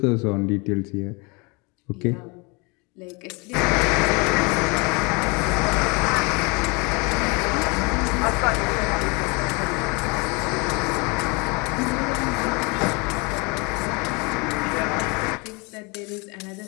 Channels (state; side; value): quieter; right; 29.4 dB